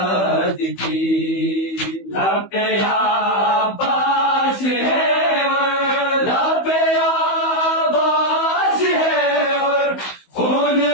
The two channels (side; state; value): right; late; 16 ms